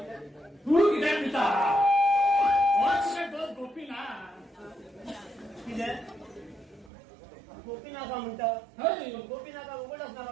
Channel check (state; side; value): drops out; left; at 6.9 s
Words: तू किती पिता गोपी ना किती गोपीनाथा म्हणतात गोपीनाथा उघडच